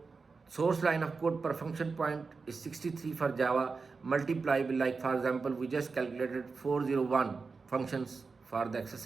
source line of code per function point is 63 for Java, multiply by, like for example, we just calculated 401 functions for the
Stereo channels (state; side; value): quieter; left; 4.5 dB